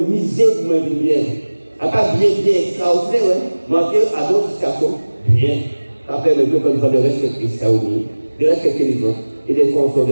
miser pour me bien. À pas bien, extraordinaire, ouais. Manquer à d'autres situations, bien. Après, le peuple de respecter ça aussi, de respecter les autres, et de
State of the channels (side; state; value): both; inverted; correlation -1.00